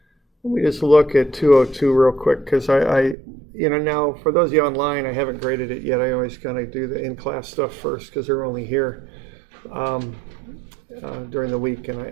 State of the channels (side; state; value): left; drops out; at 3.2 s